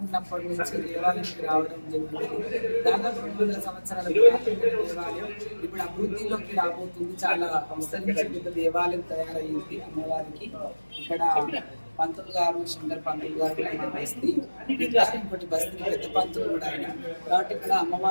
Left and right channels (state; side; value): inverted; both; correlation -1.00